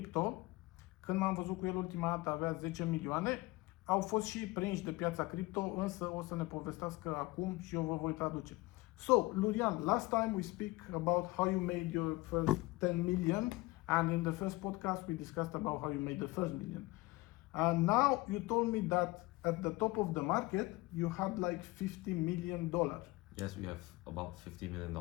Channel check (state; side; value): quieter; right; 21.4 dB